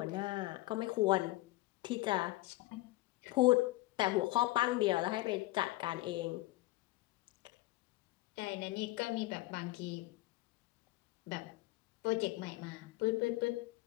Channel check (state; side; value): quieter; right; 19.5 dB